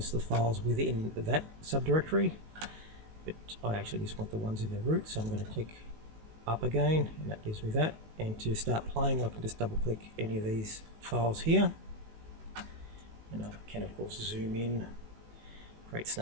the files within that subdirectory. But I actually just want the ones in the root, so I'm going to click up again, and that gives me that. And to start playing, I can just double click any of these files here. And I can of course zoom in, create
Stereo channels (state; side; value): late; left; 19 ms